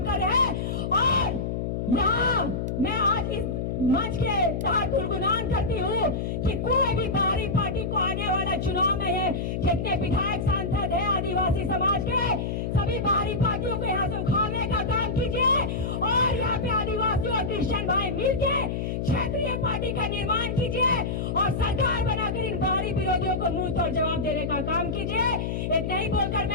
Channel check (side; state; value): left; noise; hum, 2 dB below the sound